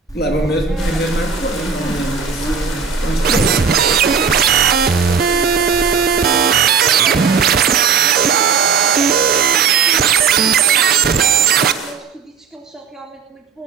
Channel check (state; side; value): quieter; left; 6.3 dB